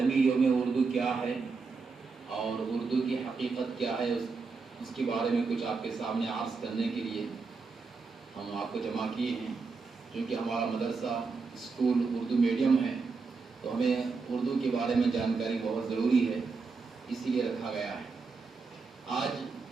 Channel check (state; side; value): quieter; left; 4.6 dB